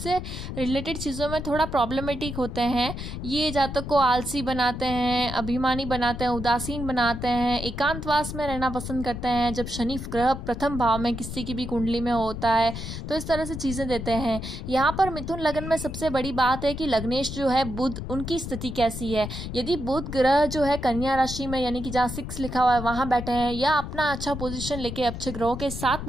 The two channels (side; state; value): left; noise; rumble, 7 dB below the sound